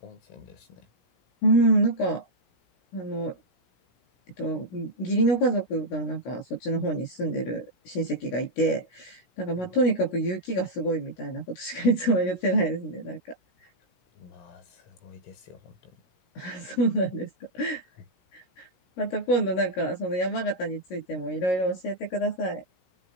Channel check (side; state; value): right; late; 16 ms